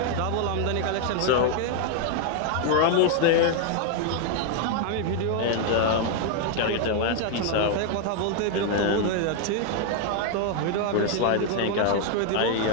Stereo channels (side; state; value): both; different; correlation 0.00